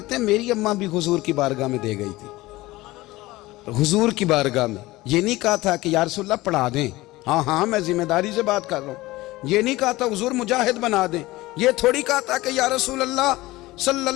हैं मेरी अम्मा भी हुजूर की बारगाह में दे गई थी। हुजूर की बारगाह में ये नहीं कहा था कि या रसूलल्लाह पढ़ा दें, हाँ हाँ मैं जिम्मेदारी से बात कर रहा हूँ। ये नहीं कहा था हुजूर मुजाहिद बना दें, ये थोड़ी कहा था कि या रसूलल्लाह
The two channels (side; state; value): right; quieter; 19.0 dB